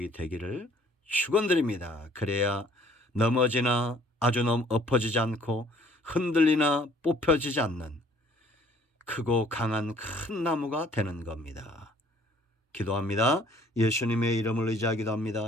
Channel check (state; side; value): normal; both; correlation 0.58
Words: 되기를 축원드립니다. 그래야 넘어지나 아주 엎어지지 않고 흔들리나 뽑혀지지 않는 크고 강한 큰 나무가 되는 겁니다. 기도합니다. 예수님의 이름을 의지하기도